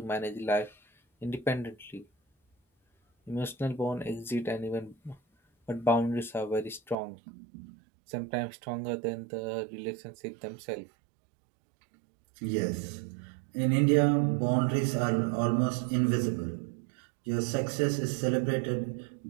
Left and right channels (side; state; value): left; drops out; at 7.0 s